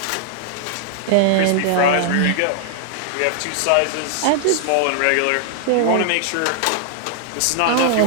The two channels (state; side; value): different; both; correlation 0.00